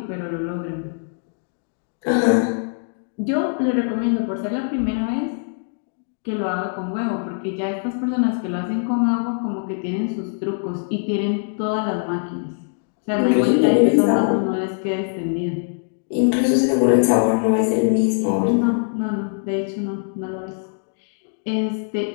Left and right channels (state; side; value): silent; right; digital silence